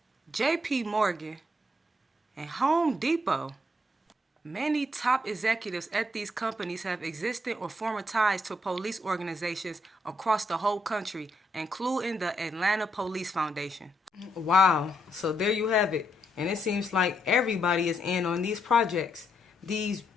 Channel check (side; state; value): both; normal; correlation 0.76